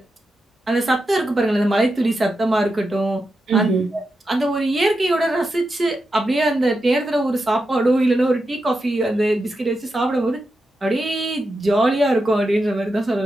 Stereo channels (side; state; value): both; normal; correlation 0.88